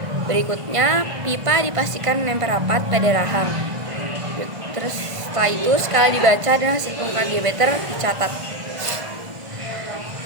Berikutnya, pipa dipastikan menempel rapat pada rahang. Terus setelah itu, skala dibaca dan hasil pengukuran diameter dicatat.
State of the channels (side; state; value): left; late; 1.5 ms